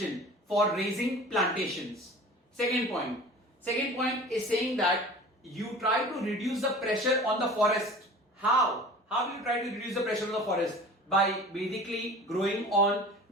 for raising plantations. Second point. Second point is saying that you try to reduce the pressure on the forest. How? How will you try to reduce the pressure on the forest? By basically growing on,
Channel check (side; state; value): both; normal; correlation 0.41